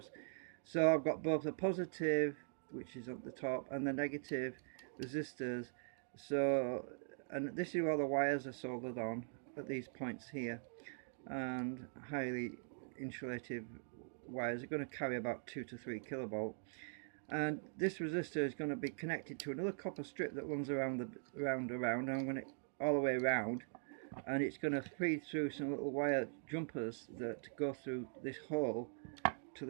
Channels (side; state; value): left; silent; digital silence